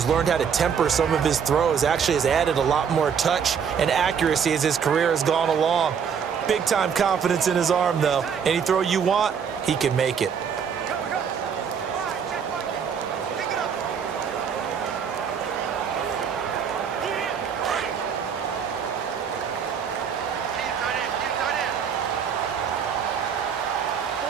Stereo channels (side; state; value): left; quieter; 7.1 dB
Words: learned how to temper some of his throws. Actually has added a lot more touch and accuracy as his career has gone along. Big-time confidence in his arm, though. Any throw you want, he can make it.